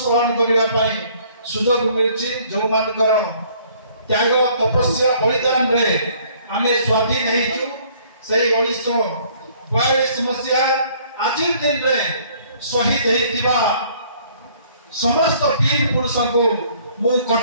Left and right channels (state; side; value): inverted; both; correlation -0.59